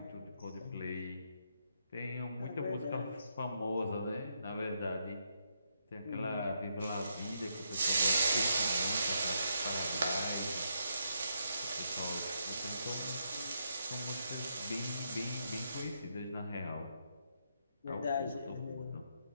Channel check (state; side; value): inverted; both; correlation -0.78